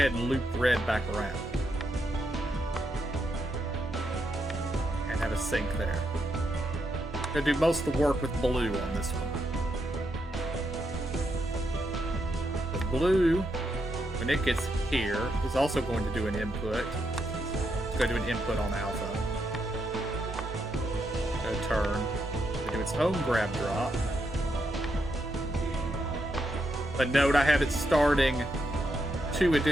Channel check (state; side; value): normal; both; correlation 0.81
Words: and loop red back around. And have a sync there. I'm going to do most of the work with blue on this one. The blue, when it gets here, is also going to do an input. It's going to do an input on alpha. It's going to turn. Do its own grab drop. But note, I have it starting 2